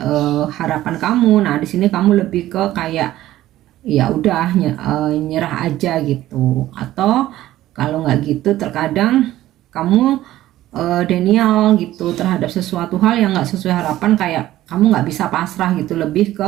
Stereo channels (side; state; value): left; quieter; 14.6 dB